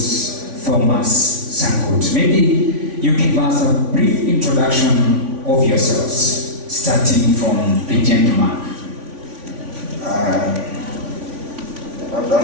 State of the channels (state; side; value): late; left; 3.5 ms